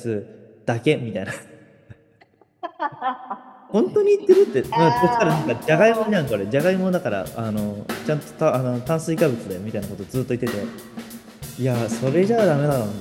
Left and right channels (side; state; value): both; identical; correlation 1.00